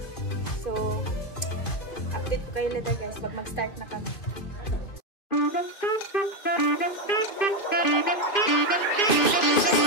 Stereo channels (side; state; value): right; late; 2.5 ms